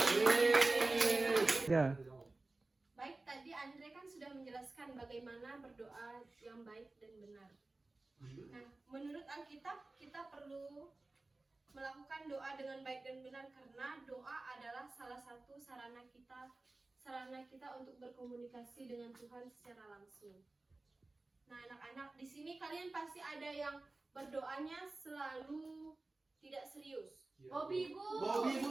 Ya. Baik, tadi Andre kan sudah menjelaskan bagaimana berdoa yang baik dan benar. Nah, menurut Alkitab, kita perlu melakukan doa dengan baik dan benar karena doa adalah salah satu sarana kita untuk berkomunikasi dengan Tuhan secara langsung. Nah, anak-anak, di sini kalian pasti ada yang berdoanya selalu tidak serius. Bobby, Bu. Bobby, Bu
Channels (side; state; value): left; quieter; 3.2 dB